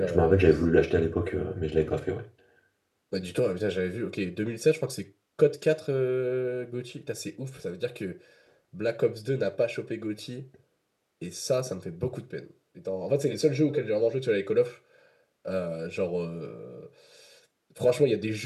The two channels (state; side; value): identical; both; correlation 1.00